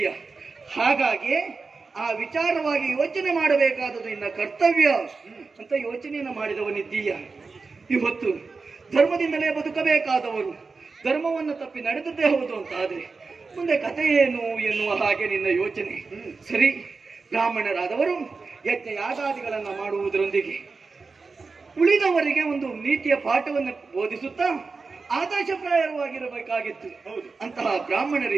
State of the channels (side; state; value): left; quieter; 4.3 dB